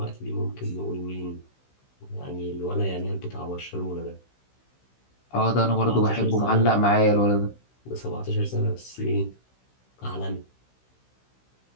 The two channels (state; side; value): late; right; 16 ms